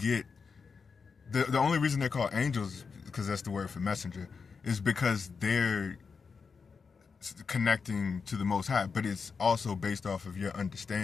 The only reason they're called angels, because that's the word for messenger, is because they're connecting to the Most High, but it's also based off of your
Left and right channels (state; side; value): quieter; right; 5.4 dB